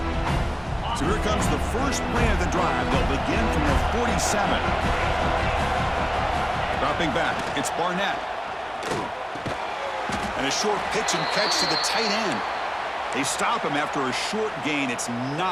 So here comes the first play of the drive. They'll begin from the 47. Dropping back, it's Barnett. And a short pitch and catch to the tight end. They stop him after a short gain. It's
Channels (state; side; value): identical; both; correlation 1.00